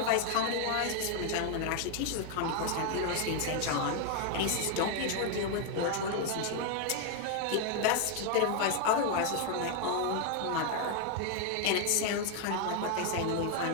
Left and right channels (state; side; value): different; both; correlation 0.01